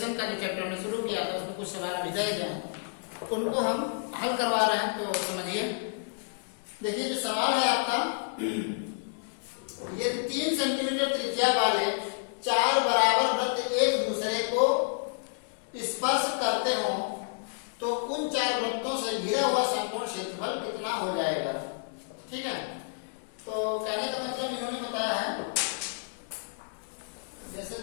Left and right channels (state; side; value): silent; right; digital silence